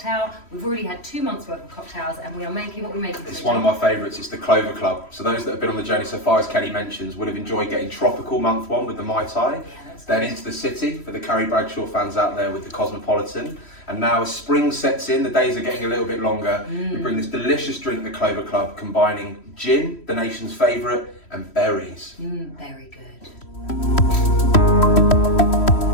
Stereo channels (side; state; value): right; late; 3.1 ms